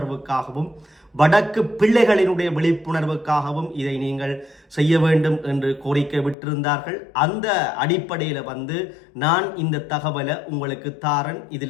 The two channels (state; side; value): drops out; right; at 6.4 s